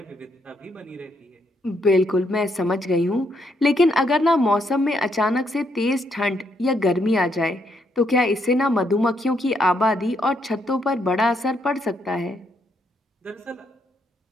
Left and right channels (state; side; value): normal; both; correlation 0.75